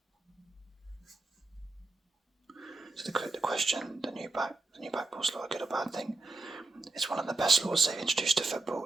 So the question, the new back pass law, a good or bad thing, it's one of the best laws they've introduced to football.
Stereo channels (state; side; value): quieter; left; 3.2 dB